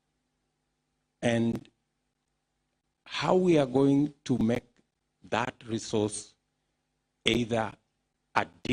And how we are going to make that resource either a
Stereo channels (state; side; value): identical; both; correlation 1.00